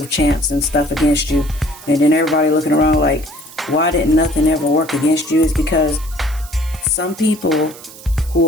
chants and stuff against you. And then everybody looking around like, why didn't nothing ever work against you? Is because some people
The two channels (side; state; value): right; noise; hiss, 18 dB below the sound